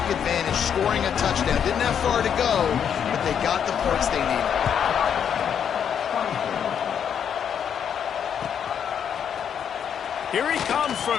advantage, scoring a touchdown. Didn't have far to go, but they got the points they needed. Here he comes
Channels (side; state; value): right; quieter; 8.2 dB